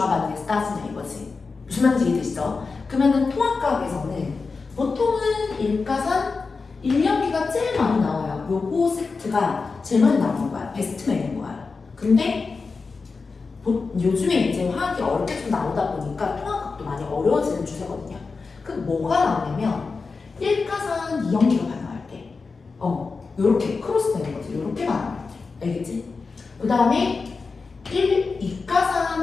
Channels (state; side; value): quieter; right; 4.4 dB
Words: 반응에서 따지냐 이거지. 무슨 말인지 이해되시죠? 그러면은 통합과학에서는 보통은 1가산 1연기가 제일 많이 나와요. 요거 세트가 제일 많이 나오는 거야. 베스트맨인 거야. 근데 요즘에 이제 화학이 어렵게 좀 나오다 보니까 통합각도 많이 어려워지는 추세거든요. 그럼 뭐가 나오냐면 1가산 2연기가 반응할 때 요렇게 크로스 되는 거지. 요렇게 반응할 때. 알겠지? 그 다음에